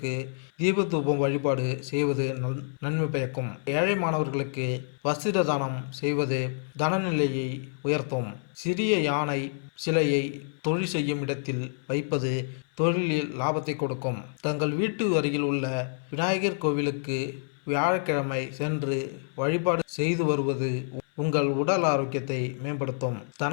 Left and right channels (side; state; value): right; silent; 60 dB below the other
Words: தீபதூபம் வழிபாடு செய்வது நன்மை பயக்கும். ஏழை மாணவர்களுக்கு வஸ்திர தானம் செய்வது தனநிலையை உயர்த்தும். சிறிய யானை சிலையை தொழில் செய்யும் இடத்தில் வைப்பது தொழிலில் லாபத்தை கொடுக்கும். தங்கள் வீட்டு அருகில் உள்ள விநாயகர் கோவிலுக்கு வியாழக்கிழமை சென்று வழிபாடு செய்து வருவது உங்கள் உடல் ஆரோக்கியத்தை மேம்படுத்தும்.